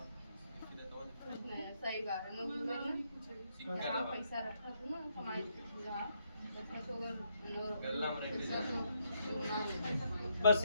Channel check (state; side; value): inverted; both; correlation -0.76